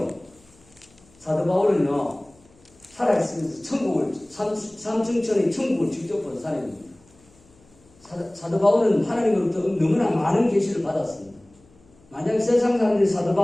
사도 바울은요 살아있으면서 천국을 삼층천의 천국을 직접 본 사람입니다. 사도 바울은 하나님으로부터 너무나 많은 계시를 받았습니다. 만약 세상 사람들이 사도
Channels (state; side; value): noise; left; hum, 30 dB below the sound